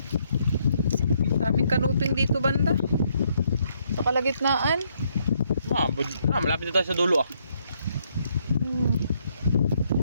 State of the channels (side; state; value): both; inverted; correlation -0.72